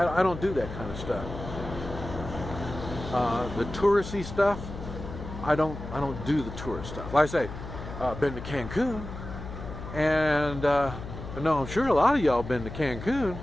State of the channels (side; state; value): left; noise; hum, 10 dB below the sound